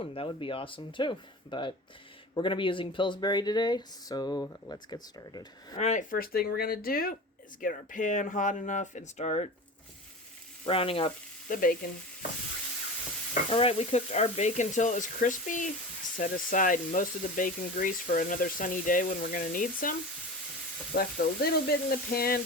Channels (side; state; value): both; normal; correlation 0.32